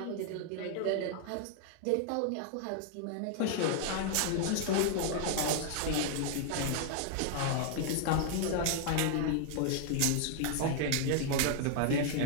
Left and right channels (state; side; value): different; both; correlation 0.00